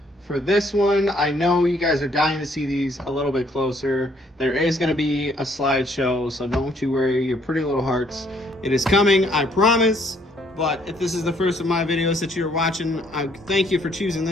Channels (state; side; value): normal; both; correlation 0.66